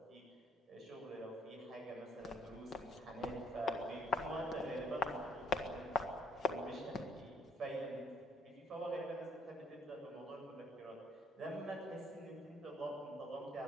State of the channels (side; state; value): both; normal; correlation 0.66